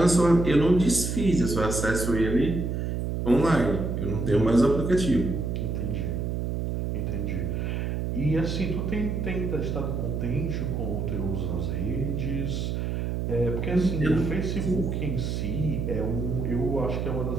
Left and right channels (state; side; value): noise; right; hum, 1 dB below the sound